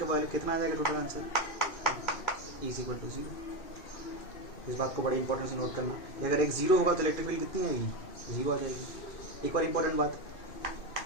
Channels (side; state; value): right; late; 2.6 ms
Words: का वैल्यू कितना आ जाएगा, टोटल आंसर E = 0। इस बात को बड़ी इंपॉर्टेंस से नोट करना, अगर x 0 होगा तो इलेक्ट्रिक फील्ड कितनी आएगी, 0 आ जाएगी। एक और इंपॉर्टेंट बात,